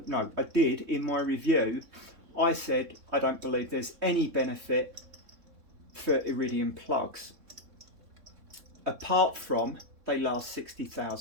my review, I said I don't believe there's any benefit for iridium plugs, apart from they last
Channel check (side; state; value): left; late; 3.6 ms